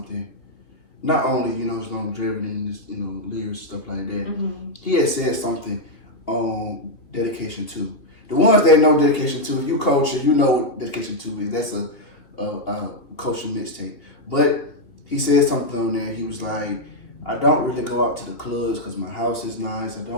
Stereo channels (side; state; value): right; late; 3.1 ms